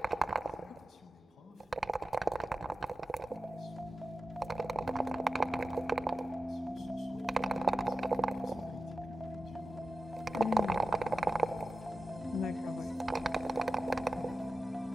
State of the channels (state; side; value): normal; both; correlation 0.93